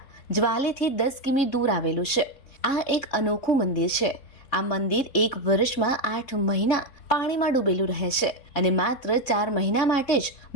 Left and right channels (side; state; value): right; late; 3.6 ms